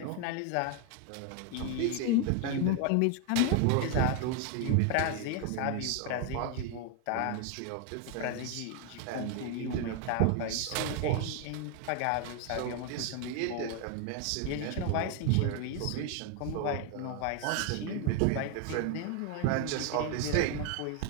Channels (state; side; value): different; both; correlation 0.01